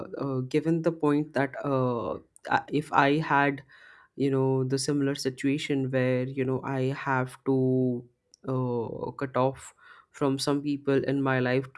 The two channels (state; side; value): identical; both; correlation 1.00